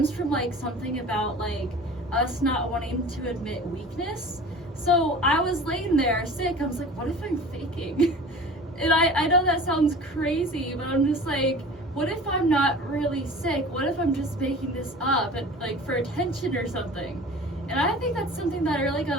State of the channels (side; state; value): both; normal; correlation 0.40